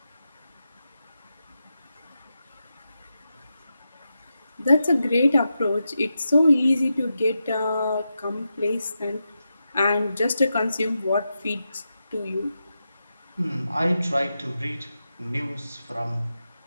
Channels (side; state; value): both; inverted; correlation -0.88